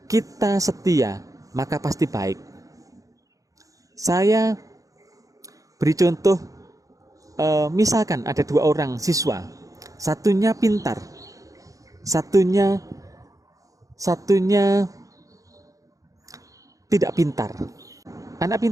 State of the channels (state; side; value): late; left; 0.16 ms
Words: kita setia, maka pasti baik. Saya beri contoh, misalkan ada 2 orang siswa, satunya pintar, satunya tidak pintar. Anak